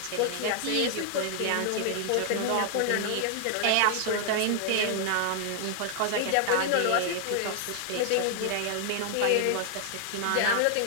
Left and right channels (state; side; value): different; both; correlation 0.00